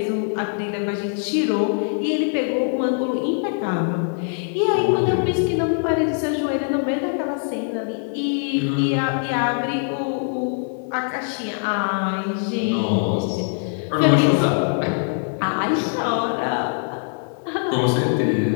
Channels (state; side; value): silent; right; 61 dB below the other